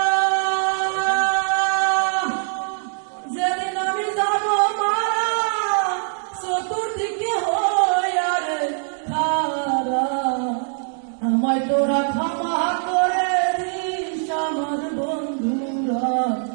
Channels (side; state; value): left; silent; 64 dB below the other